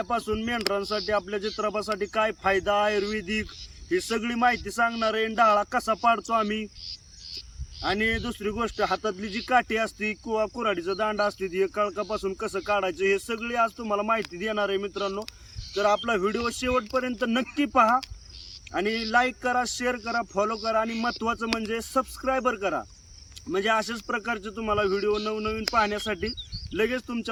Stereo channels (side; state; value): both; identical; correlation 1.00